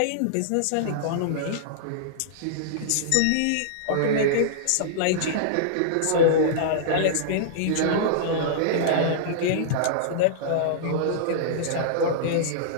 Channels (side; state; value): both; different; correlation -0.02